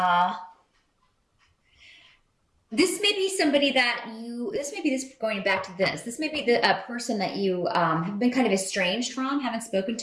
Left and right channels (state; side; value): identical; both; correlation 1.00